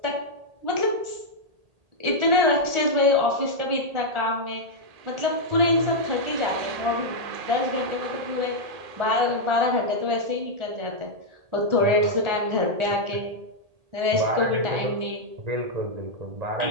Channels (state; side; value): late; left; 1.8 ms